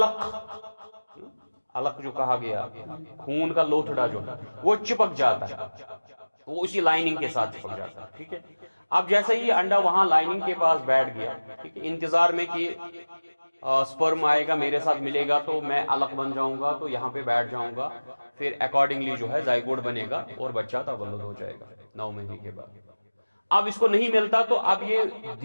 علق جو کہا گیا، خون کا لوتھڑا جو ہے وہ چپک جاتا ہے، وہ اسی لائننگ کے ساتھ چپک جاتا ہے. ٹھیک ہے، اب جیسے ہی انڈا وہاں لائننگ کے پاس بیٹھ گیا، ٹھیک ہے، انتظار میں کہ سپرم آئے گا، میرے ساتھ ملے گا تو میں علق بن جاؤں گا، تو یہاں پہ بیٹھ جاؤں گا، پھر اکارڈنگلی جو ہے زائگوٹ بنے گا اور بچہ تولد ہو جائے گا 9 مہینے کے بعد. اب اس کو نہیں ملتا تو اب یہ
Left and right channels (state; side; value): inverted; both; correlation -1.00